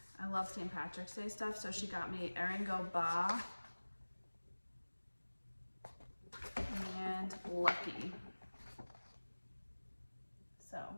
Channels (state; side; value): inverted; both; correlation -1.00